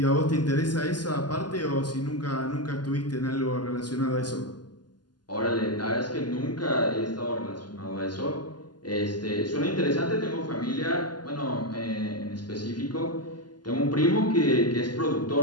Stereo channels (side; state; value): right; late; 0.71 ms